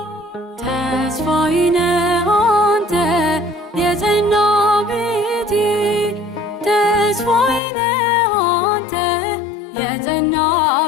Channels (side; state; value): right; drops out; at 7.6 s